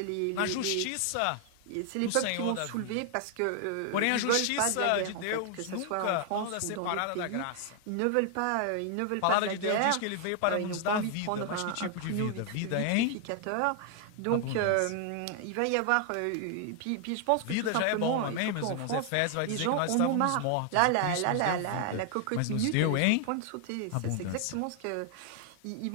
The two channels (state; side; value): different; both; correlation 0.00